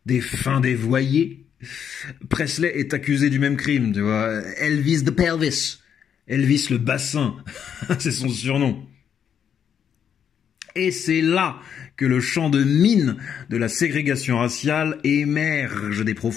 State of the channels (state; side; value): quieter; right; 8.2 dB